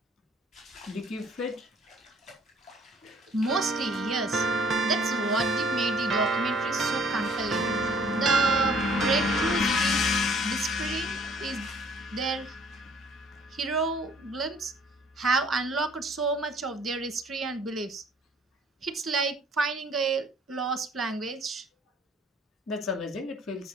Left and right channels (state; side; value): normal; both; correlation 0.58